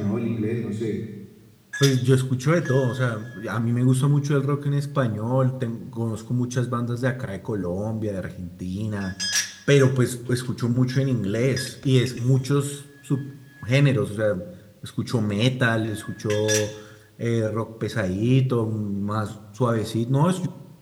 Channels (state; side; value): identical; both; correlation 1.00